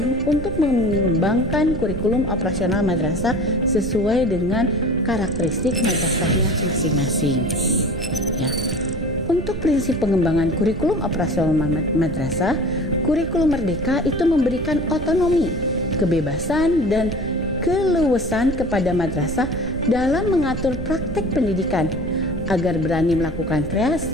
untuk mengembangkan kurikulum operasional madrasah sesuai dengan karakteristik madrasahnya masing-masing. Ya. Untuk prinsip pengembangan kurikulum operasional madrasah, kurikulum merdeka itu memberikan otonomi, kebebasan, dan keleluasan kepada madrasah dalam mengatur praktek pendidikan agar berani melakukan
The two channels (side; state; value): right; noise; rumble, 9 dB below the sound